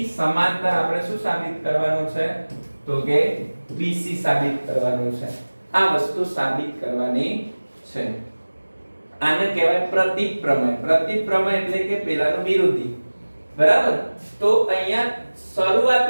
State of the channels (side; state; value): both; inverted; correlation -1.00